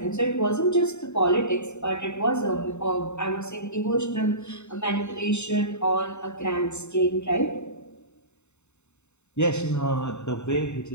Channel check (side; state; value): right; late; 0.82 ms